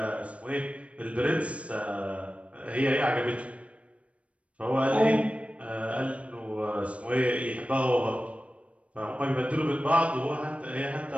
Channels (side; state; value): left; late; 0.063 ms